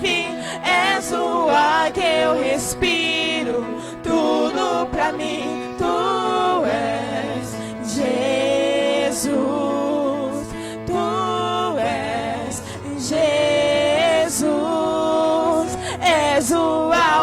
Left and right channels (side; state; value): both; identical; correlation 1.00